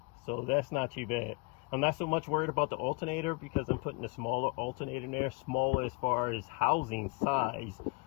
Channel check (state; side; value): quieter; right; 29.1 dB